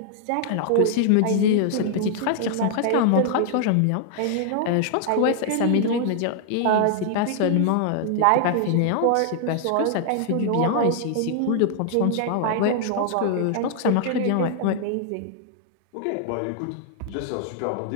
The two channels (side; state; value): both; different; correlation -0.01